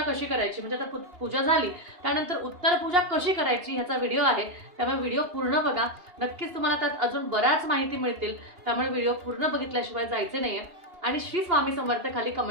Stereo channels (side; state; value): left; late; 2.8 ms